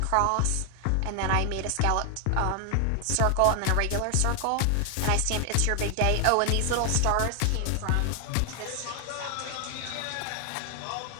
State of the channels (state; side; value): different; both; correlation 0.00